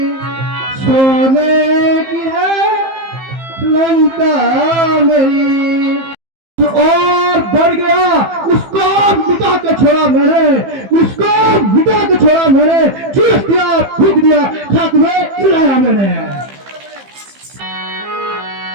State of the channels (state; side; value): late; left; 15 ms